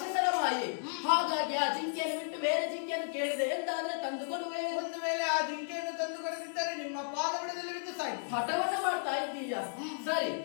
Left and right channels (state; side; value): silent; right; digital silence